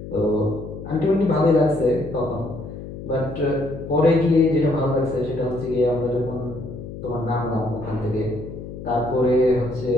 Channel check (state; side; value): noise; left; hum, 11 dB below the sound